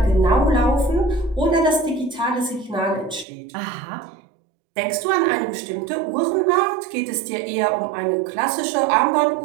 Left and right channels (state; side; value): drops out; left; at 3.2 s